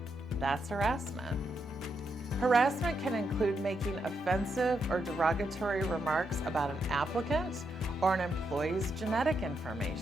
that's harassment. Harassment can include making offensive or derogatory remarks about an applicant or an employee's genetic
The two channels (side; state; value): both; normal; correlation 0.81